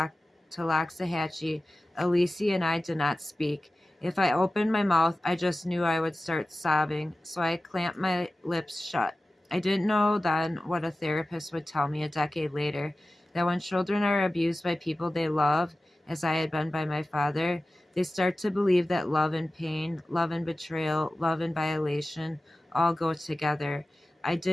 Loxahatchee, Alisi and I did not speak. If I opened my mouth, I just knew I would start sobbing, so I clamped my lips shut. I didn't know then what a therapist would tell me a decade later, that when children are abused by people they love, as I had been by my father, they start to believe that love and pain, love and betrayal, love and violation all go together. I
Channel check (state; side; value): normal; both; correlation 0.95